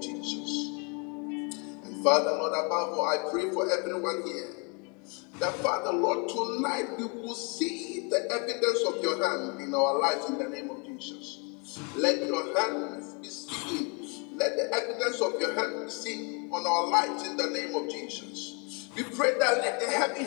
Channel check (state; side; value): quieter; right; 33.6 dB